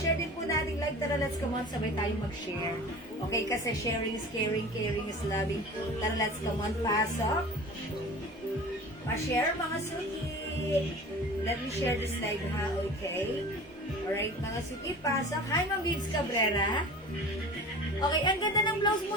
din po natin live. Tara, let's come on. Sabay tayo mag-share. Okay, kasi sharing is caring. Caring is loving. Tara, let's come on. Pasok. Pa-share mga suki. Let me share this live ha, okay? Alright, mga suki, pasok. Hi, Ma'am Bibs Cabrera. Okay, ang ganda ng blouse mo.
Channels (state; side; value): normal; both; correlation 0.38